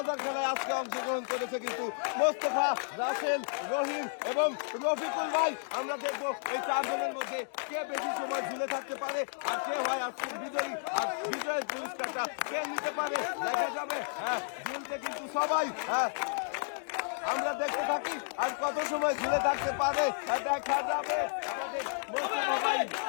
খেলায় আজকে অংশগ্রহণ করেছে কিন্তু মোস্তফা, রাসেল, রহিম এবং রফিকুল ভাই। আমরা দেখবো এই চারজনের মধ্যে কে বেশি সময় ঝুলে থাকতে পারে আর কে হয় আজকের বিজয়ী, আর বিজয়ের পুরস্কারটা কে নিতে পারে দেখা যাবে। হ্যাঁ, ঝুলতে কিন্তু সবাই, হ্যাঁ আমরা দেখতে থাকি আর কত সময় ঝুলে থাকতে পারে দেখা যাবে। আমাদের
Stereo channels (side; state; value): right; silent; digital silence